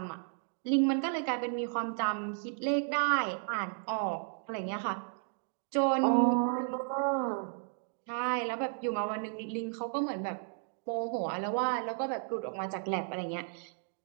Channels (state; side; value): silent; left; 55 dB below the other